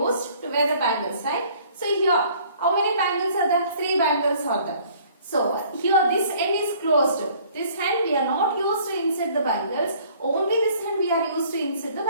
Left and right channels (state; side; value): inverted; both; correlation -0.56